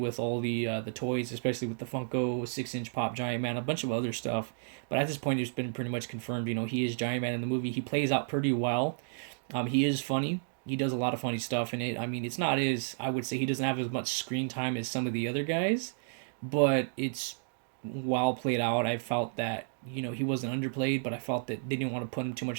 all the toys, especially with the Funko 6-inch pop Giant Man, a bunch of other stuff. But at this point, it's been pretty much confirmed. He is Giant Man in the movie. He plays out pretty well. He is funny. He does a lot of funny stuff in it. I mean, it's not as, I would say he doesn't have as much screen time as some of the other guys, but it's well played out. I felt that he wasn't underplayed, but I felt that they didn't want to put him too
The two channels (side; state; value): left; silent; digital silence